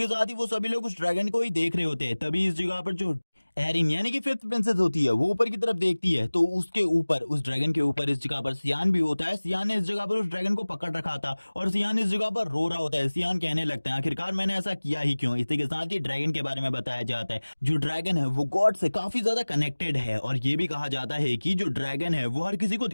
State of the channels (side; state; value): both; inverted; correlation -1.00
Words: साथ ही वो सभी लोग उस ड्रैगन को ही देख रहे होते हैं। तभी इस जगह पर जो एरिन यानी कि फिफ्थ प्रिंसेस होती है वो ऊपर की तरफ देखती है तो उसके ऊपर उस ड्रैगन के ऊपर इस जगह पर सियान भी होता है। सियान ने इस जगह पर उस ड्रैगन को पकड़ रखा था और सियान इस जगह पर रो रहा होता है। सियान कहने लगता है आखिरकार मैंने ऐसा किया ही क्यों। इसी के साथ ही ड्रैगन के बारे में बताया जाता है जो ड्रैगन है वो गॉड से काफी ज्यादा कनेक्टेड है और ये भी कहा जाता है कि जो ड्रैगन है वो हर किसी को